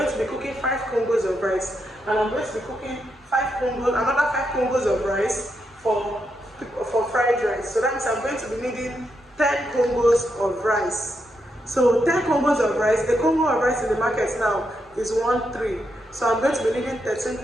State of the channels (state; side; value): normal; both; correlation 0.82